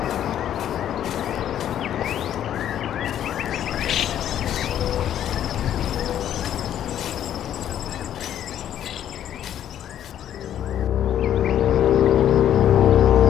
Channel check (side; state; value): right; quieter; 10.6 dB